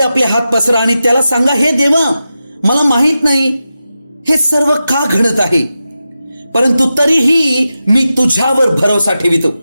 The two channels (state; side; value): inverted; both; correlation -0.91